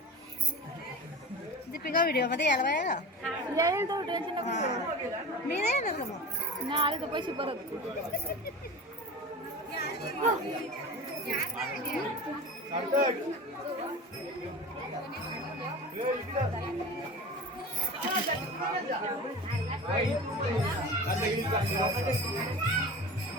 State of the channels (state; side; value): normal; both; correlation 0.33